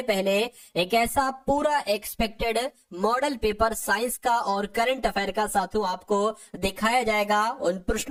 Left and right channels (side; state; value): both; identical; correlation 1.00